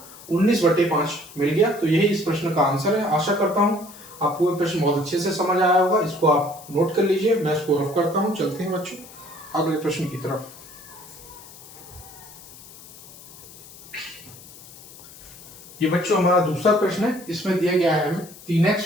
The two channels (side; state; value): left; noise; hiss, 19 dB below the sound